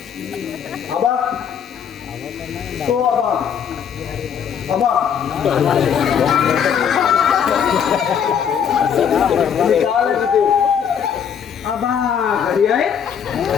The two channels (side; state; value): right; quieter; 8.0 dB